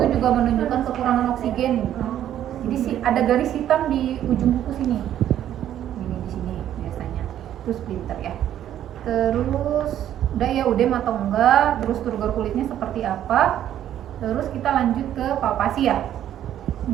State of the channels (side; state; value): left; quieter; 11.2 dB